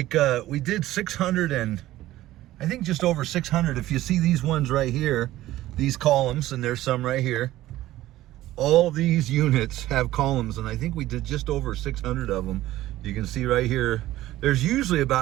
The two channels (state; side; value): quieter; left; 15.4 dB